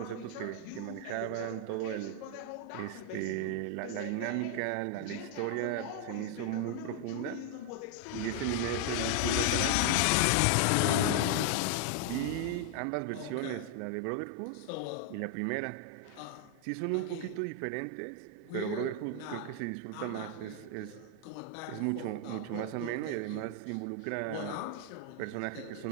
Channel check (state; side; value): different; both; correlation 0.00